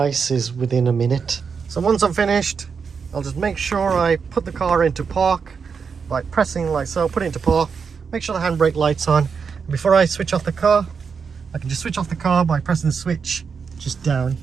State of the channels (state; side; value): quieter; left; 5.9 dB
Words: within a minute. So once I'm finished, I'll just make sure I put the car into park by pressing like so, put it into park, make sure the handbrake light's on. And before I switch off the car, I can just switch off the car by pressing the switch just down